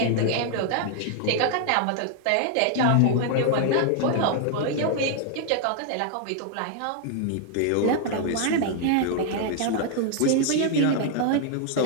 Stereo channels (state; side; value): different; both; correlation 0.00